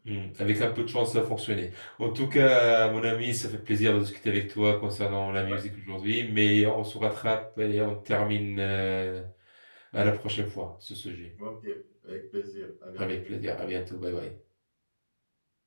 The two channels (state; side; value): inverted; both; correlation -1.00